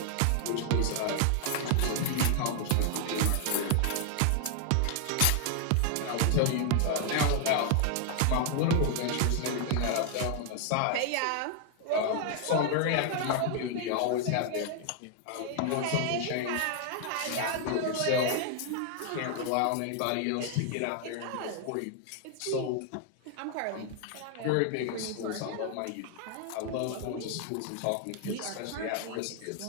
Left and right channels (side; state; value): both; different; correlation 0.00